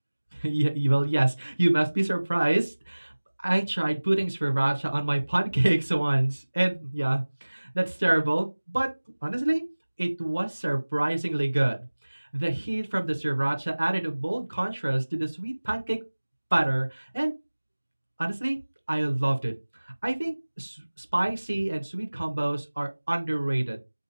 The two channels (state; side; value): inverted; both; correlation -1.00